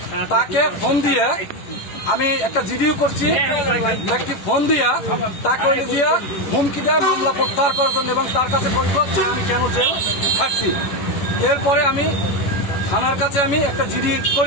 তাকে ফোন দিয়ে, আমি একটা জিডিও করছি, একটি ফোন দিয়া তাকে দিয়ে হুমকি দেয় মামলা প্রত্যাহার করার জন্য এবং তার কাছে পরিচয় আমি কেন যে থাকছি। এরপরে আমি থানার কাছে আমি একটা জিডি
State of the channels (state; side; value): late; right; 11 ms